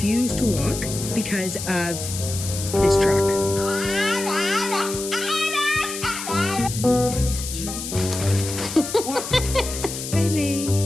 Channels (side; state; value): left; noise; hiss, 7 dB below the sound